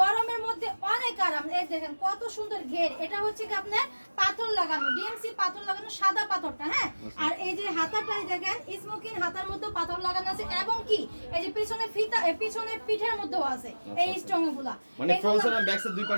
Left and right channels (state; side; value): inverted; both; correlation -1.00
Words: মধ্যে অনেক আরাম। এই দেখেন কত সুন্দর ঘের, এটা হচ্ছে কি আপনার পাথর লাগানো, ডিএমসি পাথর লাগানো, সাদা পাথরটা। হ্যাঁ, আর এই যে হাতাটাই দেখেন স্মোকিং হাতার মধ্যে পাথর লাগানো আছে, এবং কি এই যে পিছনে ফিতা, পিছনে পিঠের মধ্যেও আছে এই স্ট্রং গুলা, মানে ফ্রন্ট সাইড আর ব্যাক সাইড দুই